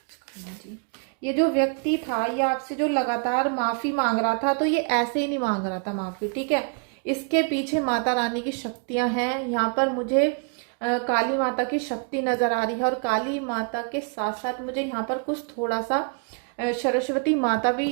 Khanna ji. ये जो व्यक्ति था, ये आपसे जो लगातार माफ़ी मांग रहा था, तो ये ऐसे ही नहीं मांग रहा था माफ़ी, ठीक है। इसके पीछे माता रानी की शक्तियां हैं। यहाँ पर मुझे काली माता की शक्ति नज़र आ रही है और काली माता के साथ साथ मुझे यहाँ पर कुछ थोड़ा सा सरस्वती माता भी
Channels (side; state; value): left; quieter; 37.3 dB